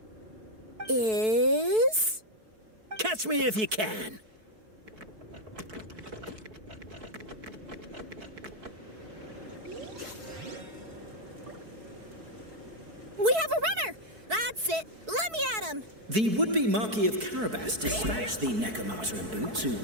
Catch me if you can! We have a runner! That's it! Let me at him! The would-be Marquis of Carabas dispatched the Necromancer in boots, who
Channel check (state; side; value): late; left; 4.6 ms